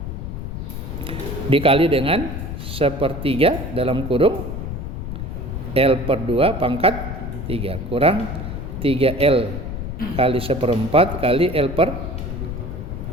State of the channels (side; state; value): left; noise; rumble, 6 dB below the sound